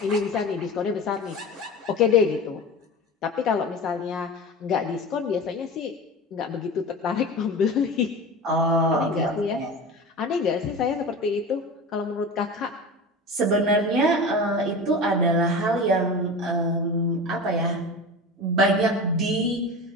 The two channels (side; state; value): both; normal; correlation 0.31